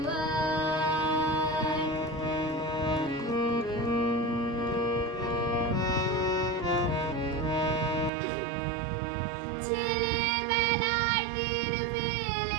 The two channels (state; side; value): drops out; left; at 8.1 s